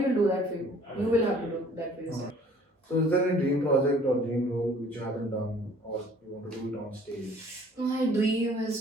do that for you. You will have to do that for yourself. So is there any dream project or dream role which you haven't done or you want to do it on stage? My dream is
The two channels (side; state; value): both; normal; correlation 0.54